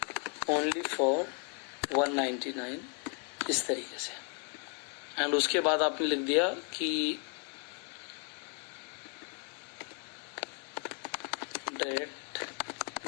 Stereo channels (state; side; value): quieter; right; 39.4 dB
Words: ओनली फॉर 199 इस तरीके से। एंड उसके बाद आपने लिख दिया कि direct